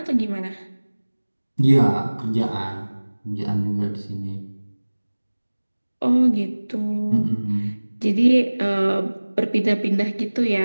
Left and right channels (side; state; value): both; inverted; correlation -1.00